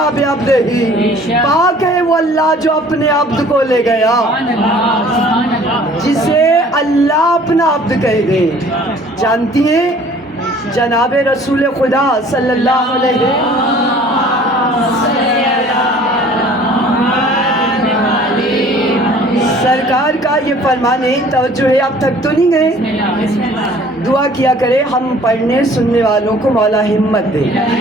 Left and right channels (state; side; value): normal; both; correlation 0.52